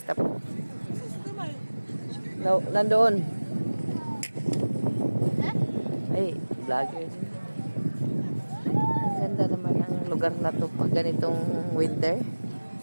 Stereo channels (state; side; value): inverted; both; correlation -1.00